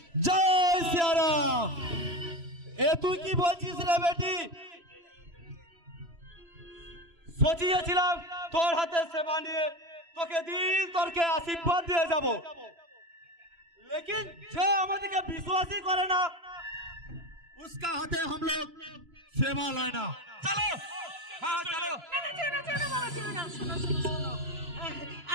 জয় শ্রীরাম। এ তুই কি বলছিস রে বেটি? সোচিয়েছিলাম তোর হাতে সেবা নিয়ে তোকে দিল তোরকে আশীর্বাদ দিয়ে যাব, लेकिन যে আমাদেরকে বিশ্বাসই করে না उसका हाथे हम लोग सेवा लेना। चलो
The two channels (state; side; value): late; left; 3.0 ms